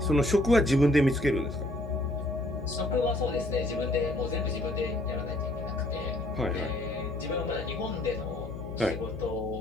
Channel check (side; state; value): left; noise; hum, 9 dB below the sound